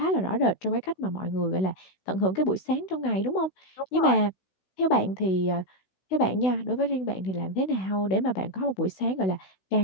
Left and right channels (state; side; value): late; right; 16 ms